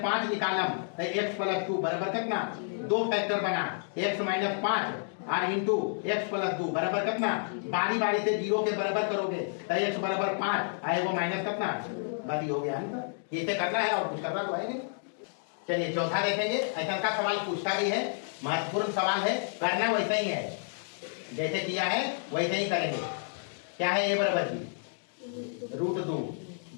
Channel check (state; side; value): silent; right; digital silence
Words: 5 निकालम x प्लस 2 बराबर कितना, दो फैक्टर बना x माइनस 5 और इंटू एक्स प्लस 2 बराबर कितना, बारी बारी से 0 के बराबर करोगे तो x बराबर 5 आए वो माइनस कितना, बारी हो गया है। इसे करना है और कुछ करना तो है नहीं। चलिए चौथा देखेंगे। ऐसा का सवाल पूछता भी है, महत्वपूर्ण सवाल है, करना वैसा ही है जैसे किया है वैसे ही करेंगे। क्या है? ए बराबर बी रूट 2,